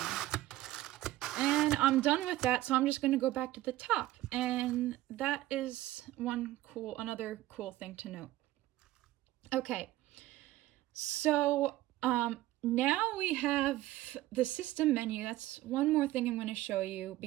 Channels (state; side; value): quieter; left; 15.9 dB